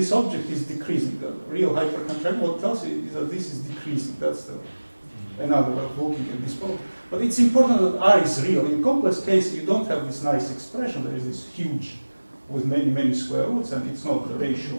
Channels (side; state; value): both; inverted; correlation -1.00